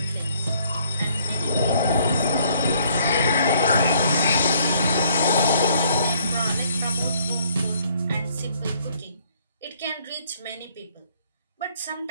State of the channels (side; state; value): both; inverted; correlation -0.64